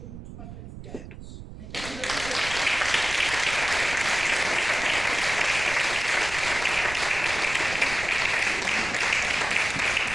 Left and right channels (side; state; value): right; noise; rumble, 12 dB below the sound